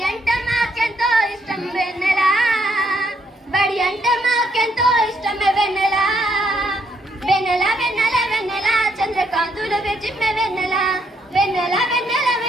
అంటే మాకెంతో ఇష్టం వెన్నెల బడి అంటే మాకెంతో ఇష్టమే వెన్నెల వెన్నెల వెన్నెల వెన్నెల చంద్రకాంతులు విజిమ్మె వెన్నెల వెన్నెల వెన్నెల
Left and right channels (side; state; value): both; normal; correlation 0.73